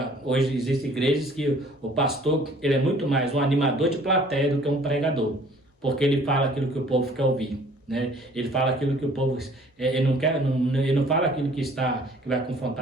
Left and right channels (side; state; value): both; normal; correlation 0.55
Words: Hoje existem igrejas que o pastor ele é muito mais um animador de plateia do que um pregador, porque ele fala aquilo que o povo quer ouvir. Né? Ele fala aquilo que o povo ele não quer, ele não fala aquilo que vai